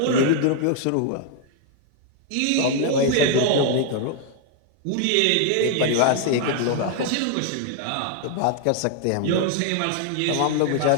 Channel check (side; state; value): both; different; correlation 0.00